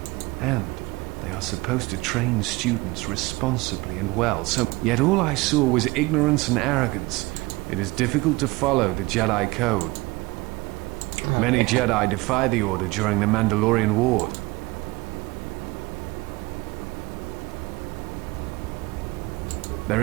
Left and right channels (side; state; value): left; quieter; 22.8 dB